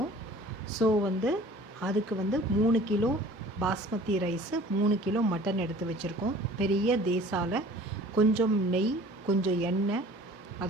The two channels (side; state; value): both; normal; correlation 0.48